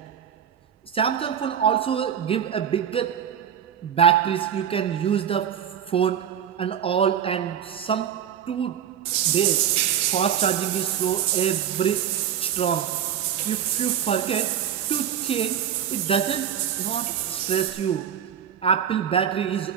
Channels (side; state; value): left; quieter; 9.0 dB